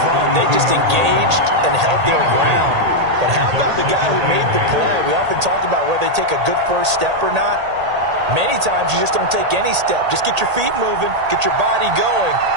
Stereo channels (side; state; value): left; late; 1.8 ms